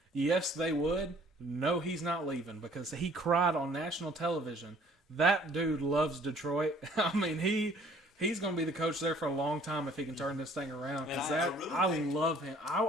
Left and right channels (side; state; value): both; normal; correlation 0.56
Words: yes, they would. No, he's not leaving, because he cried on national television. That dude loves Detroit. I mean, he's going to be the coach there for a long time if he can turn this thing around. And Because I I really think- love him. I